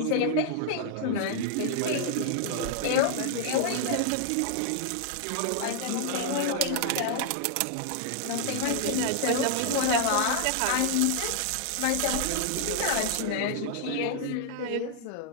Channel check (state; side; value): different; both; correlation 0.00